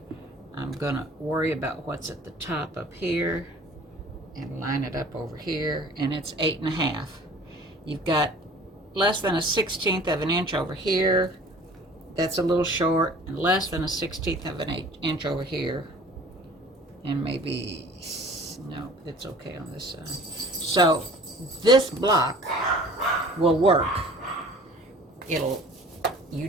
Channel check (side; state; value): both; normal; correlation 0.47